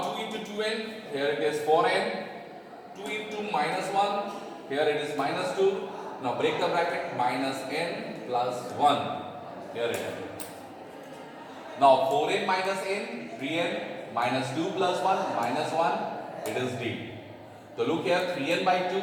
2 into 2n, here it is 4n. 2 into minus 1, here it is minus 2. Now break the bracket, minus n plus 1. Here it is. Now 4n minus n, 3n, minus 2 plus 1, minus 1. It is D. So look here, 3n by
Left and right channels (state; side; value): identical; both; correlation 1.00